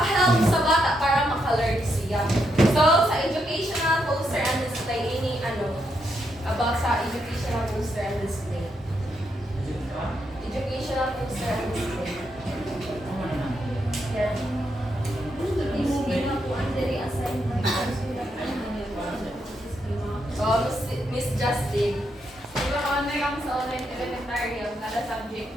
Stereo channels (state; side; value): normal; both; correlation 0.80